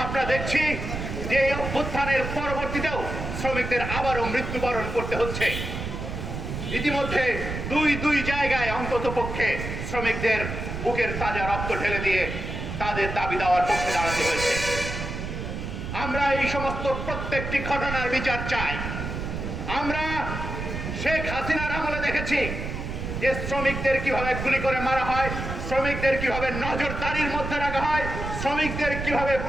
আমরা দেখছি যে এই অভ্যুত্থানের পরবর্তীতেও শ্রমিকদের আবারও মৃত্যুবরণ করতে হচ্ছে। ইতিমধ্যে দুই জায়গায় অন্তত পক্ষে শ্রমিকদের বুকের তাজা রক্ত ঢেলে দিয়ে তাদের দাবি দেওয়ার পক্ষে দাঁড়াতে হয়েছে। আমরা এই সমস্ত প্রত্যেকটি ঘটনার বিচার চাই। আমরা শেখ হাসিনার আমলে দেখেছি যে শ্রমিকদের কিভাবে গুলি করে মারা হয়, শ্রমিকদের কিভাবে নজরদারির মধ্যে রাখা হয়, শ্রমিকদের কিভাবে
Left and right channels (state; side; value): noise; right; rumble, 5 dB below the sound